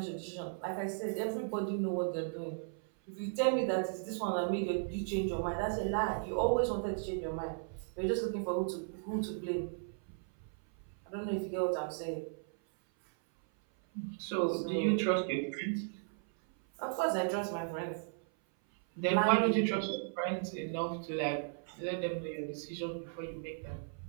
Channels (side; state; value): left; silent; 54 dB below the other